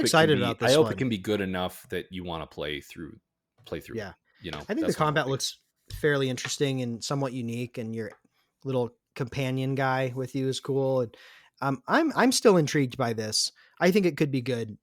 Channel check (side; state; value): both; identical; correlation 1.00